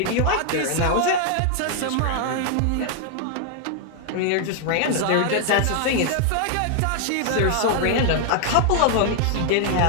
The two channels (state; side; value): different; both; correlation 0.00